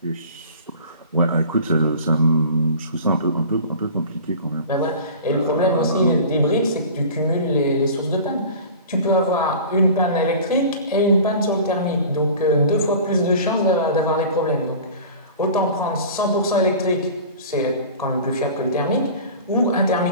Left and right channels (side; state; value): both; inverted; correlation -0.39